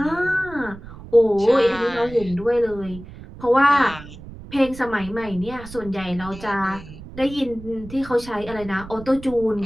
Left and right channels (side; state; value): right; noise; rumble, 15 dB below the sound